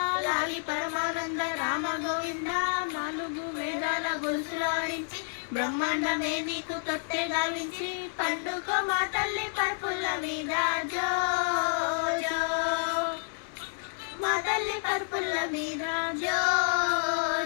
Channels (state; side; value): silent; right; digital silence